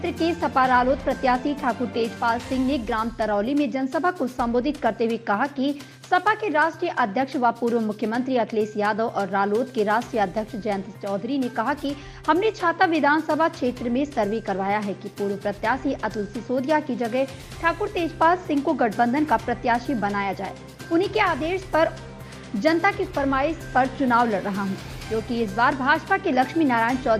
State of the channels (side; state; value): both; identical; correlation 1.00